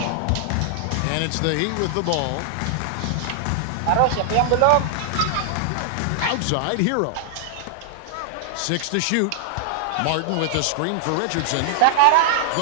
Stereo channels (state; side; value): different; both; correlation -0.01